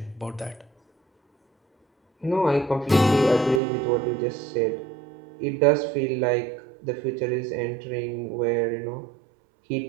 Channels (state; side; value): drops out; left; at 3.6 s